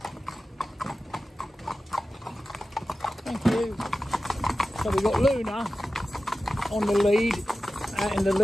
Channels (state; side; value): normal; both; correlation 0.94